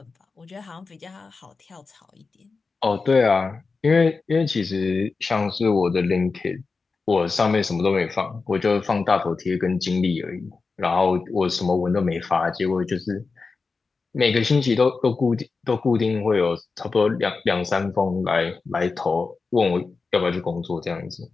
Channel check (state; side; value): quieter; right; 4.4 dB